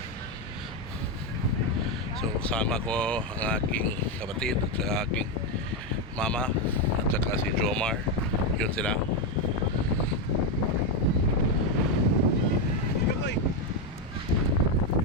So kasama ko ang aking kapatid at saka aking mama at saka si Jomar. Yun sila.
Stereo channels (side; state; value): both; normal; correlation 0.06